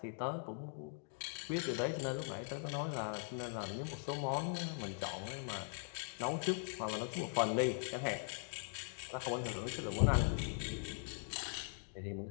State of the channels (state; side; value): silent; right; 50 dB below the other